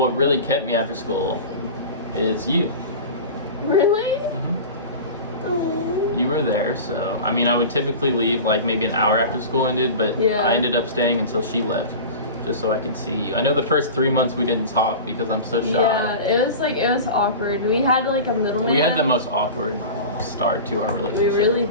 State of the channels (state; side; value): inverted; both; correlation -0.33